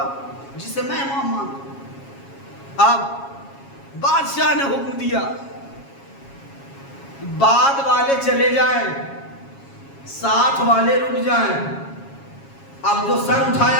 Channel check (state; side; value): late; right; 7.3 ms